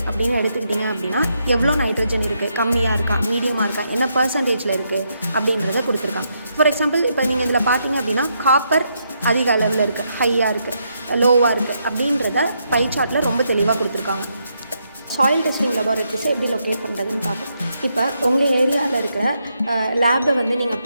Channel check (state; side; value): inverted; both; correlation -0.79